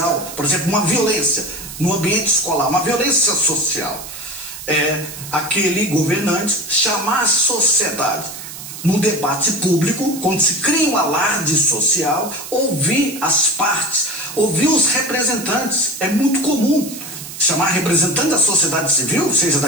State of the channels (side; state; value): right; noise; hiss, 12 dB below the sound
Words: por exemplo, uma violência no ambiente escolar, uma violência social, aquele governante chamar a sociedade no debate público, quando se cria um alarde social, ouvir as partes, ouvir os representantes. É muito comum chamar representante da sociedade civil, seja